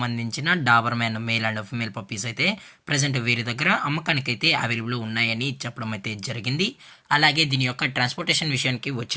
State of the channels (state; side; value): identical; both; correlation 1.00